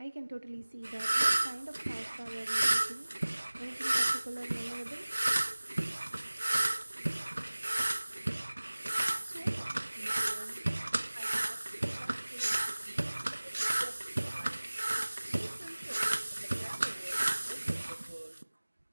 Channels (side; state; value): both; inverted; correlation -1.00